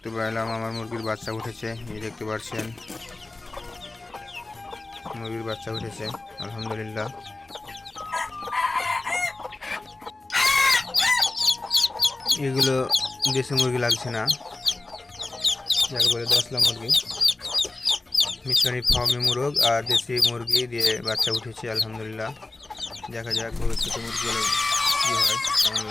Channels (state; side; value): quieter; right; 3.1 dB